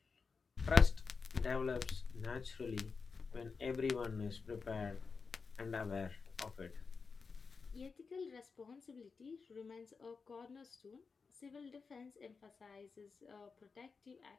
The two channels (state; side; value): quieter; right; 4.9 dB